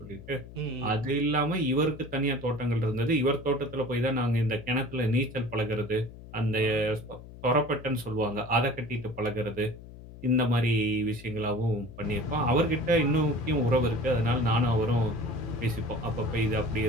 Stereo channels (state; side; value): noise; left; hum, 16 dB below the sound